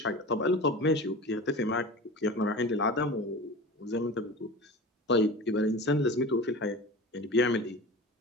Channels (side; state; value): both; normal; correlation 0.33